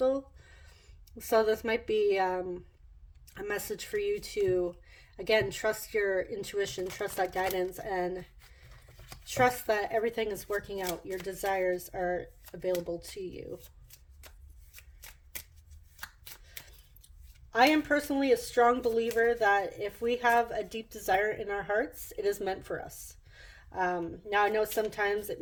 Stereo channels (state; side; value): identical; both; correlation 1.00